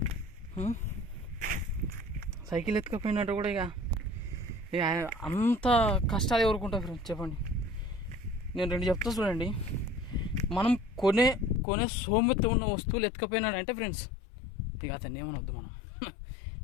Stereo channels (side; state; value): right; drops out; at 11.6 s